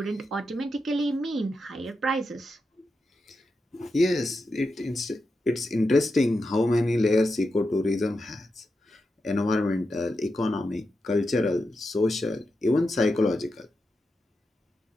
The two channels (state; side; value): normal; both; correlation 0.88